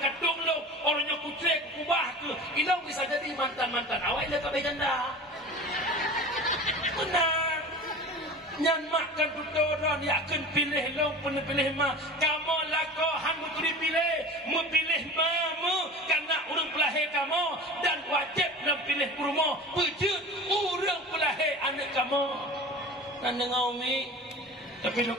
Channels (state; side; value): normal; both; correlation 0.36